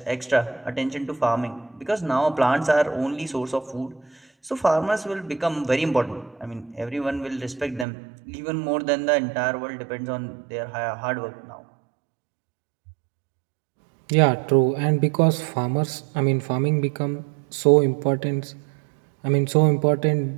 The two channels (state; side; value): drops out; left; at 7.9 s